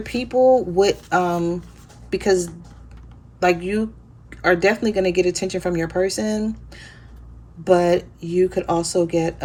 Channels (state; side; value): identical; both; correlation 1.00